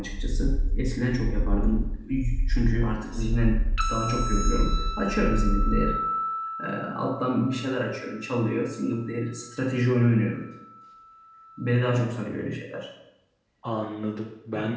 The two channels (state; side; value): identical; both; correlation 1.00